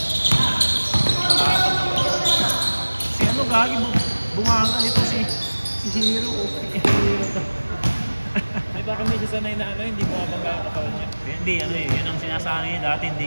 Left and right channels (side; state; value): both; inverted; correlation -1.00